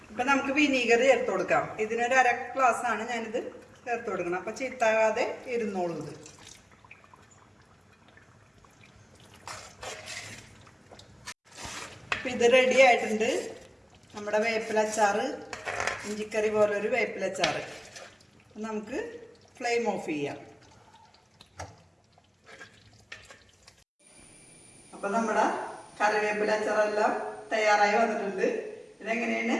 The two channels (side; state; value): both; identical; correlation 1.00